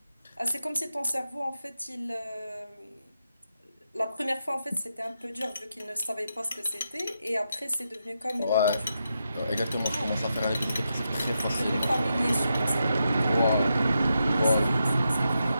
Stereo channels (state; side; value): inverted; both; correlation -0.85